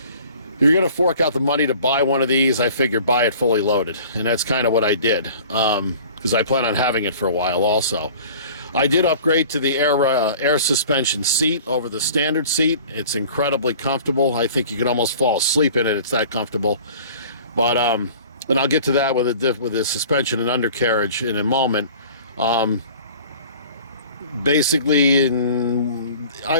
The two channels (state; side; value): inverted; both; correlation -0.46